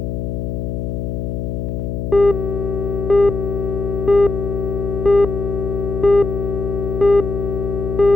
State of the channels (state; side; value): noise; left; hum, 3 dB below the sound